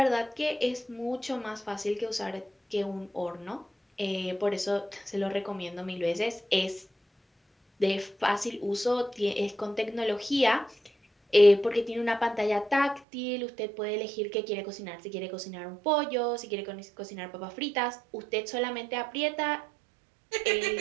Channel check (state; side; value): drops out; left; at 13.0 s